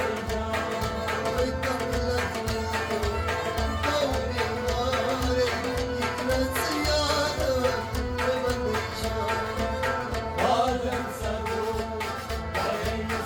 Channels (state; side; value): identical; both; correlation 1.00